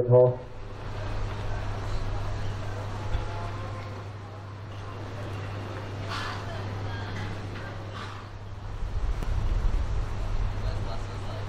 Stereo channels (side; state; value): both; identical; correlation 1.00